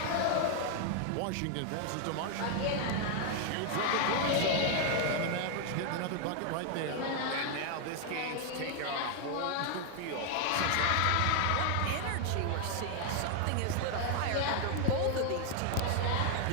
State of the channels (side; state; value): both; different; correlation 0.00